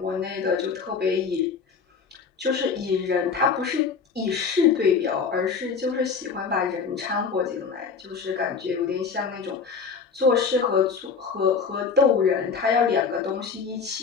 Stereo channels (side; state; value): right; quieter; 5.6 dB